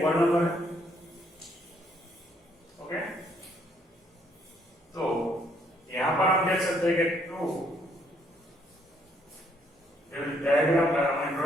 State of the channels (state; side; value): normal; both; correlation 0.69